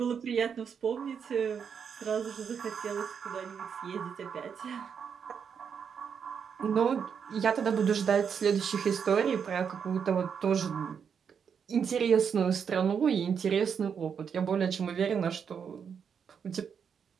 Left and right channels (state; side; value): quieter; left; 7.0 dB